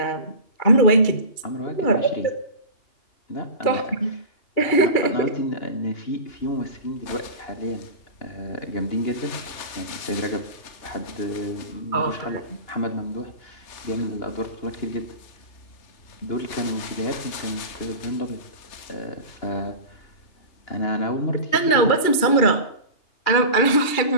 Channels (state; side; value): late; right; 2.4 ms